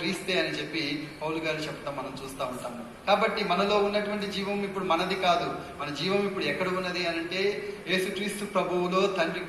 అని చెప్పి పౌలు గారు చెప్తాం మనం చూస్తూ ఉంటాము. కాబట్టి మనలో ఉన్నటువంటి జీవం ఇప్పుడు మనది కాదు. మన జీవం ఇప్పుడు ఎక్కడ ఉన్నది అని అంటే, యేసుక్రీస్తు ప్రభువులో తండ్రి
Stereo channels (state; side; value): identical; both; correlation 1.00